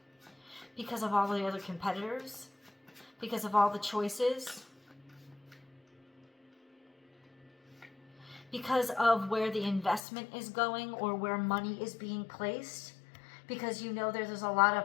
Because of all the other competitors, because of all the choices, because of where the investment is going or where money is being placed, because you know there's a lot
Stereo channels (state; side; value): drops out; right; at 10.0 s